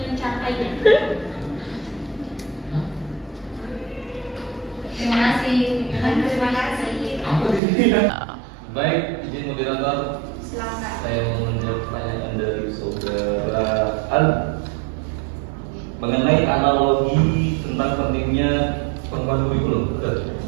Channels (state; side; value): drops out; left; at 7.6 s